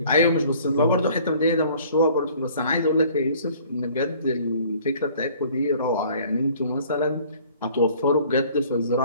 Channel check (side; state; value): both; inverted; correlation -0.54